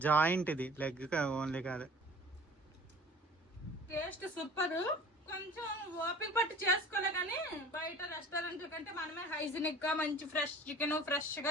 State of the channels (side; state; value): both; normal; correlation 0.46